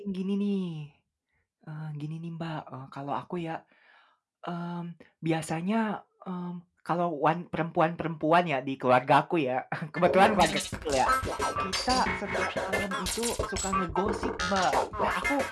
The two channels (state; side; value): identical; both; correlation 1.00